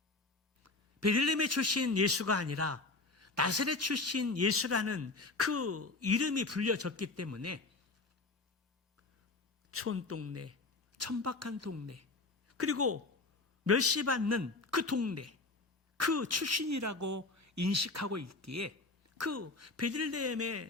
베들레헴의 출신 예수가 아니라 나사렛 출신 예수라는 그 이름이 불려졌기 때문에 촌동네, 천박한 동네, 그리고 멸시받는 그 동네, 그 출신이라고 인식하고 있기에 그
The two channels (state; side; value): quieter; right; 3.5 dB